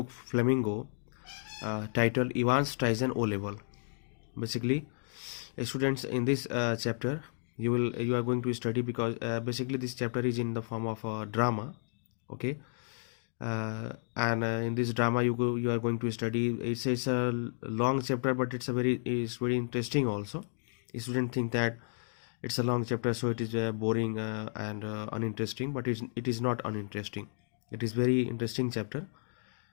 Flamingo titled EVANS Tizen O Level. Basically, students, in this chapter you are going to study because basically this chapter is in the form of a drama, okay, and in this drama you are going to study. It's a long chapter, but it's very interesting also. Students think that it's a long chapter, so it is boring and uninteresting, but it is not uninteresting. It is very interesting chapter,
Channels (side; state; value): right; silent; digital silence